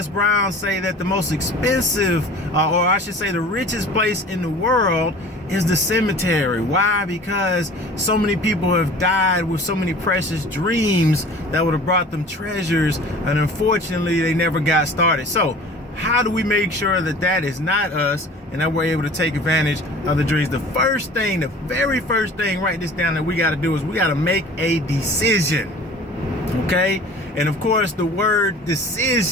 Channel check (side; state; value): both; normal; correlation 0.44